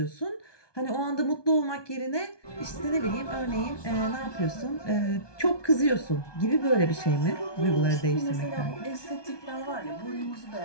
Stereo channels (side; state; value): right; late; 1.2 ms